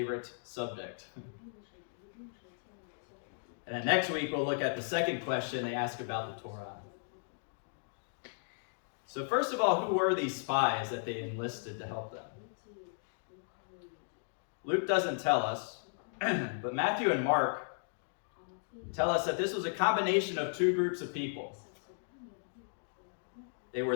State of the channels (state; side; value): silent; right; digital silence